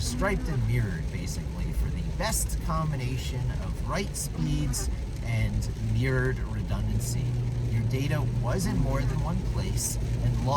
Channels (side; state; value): both; identical; correlation 1.00